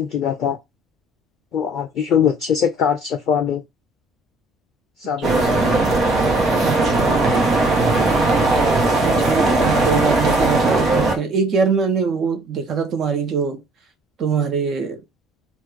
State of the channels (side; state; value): both; normal; correlation 0.57